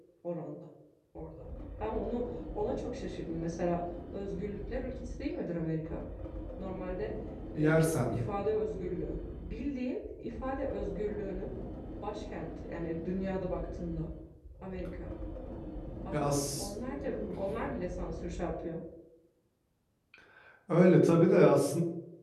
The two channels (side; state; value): both; identical; correlation 1.00